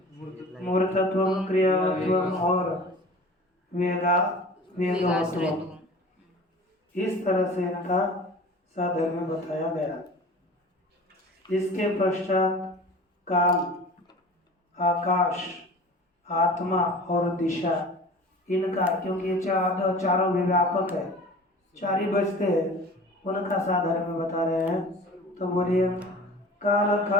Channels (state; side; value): normal; both; correlation 0.41